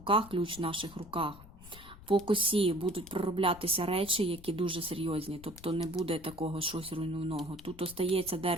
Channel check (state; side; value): noise; left; rumble, 19 dB below the sound